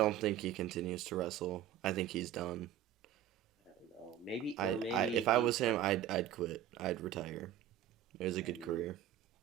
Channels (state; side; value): quieter; left; 10.9 dB